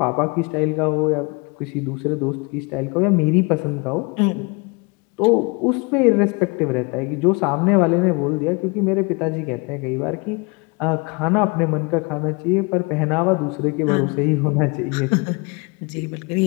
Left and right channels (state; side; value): quieter; right; 29.7 dB